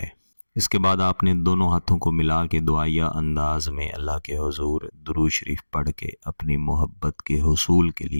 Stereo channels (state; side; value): inverted; both; correlation -1.00